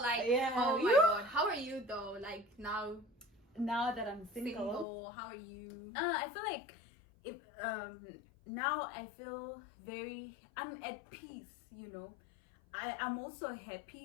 like, Yeah. oh my god, how are you though? Like now, Now that I'm single, how are you? I feel like if now I feel I'm at peace, you know. I'm also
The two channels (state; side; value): drops out; right; at 4.9 s